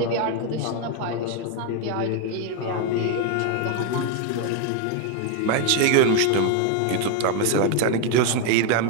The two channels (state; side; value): different; both; correlation 0.01